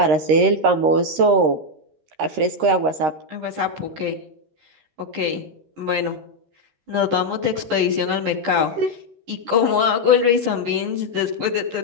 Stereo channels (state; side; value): late; left; 13 ms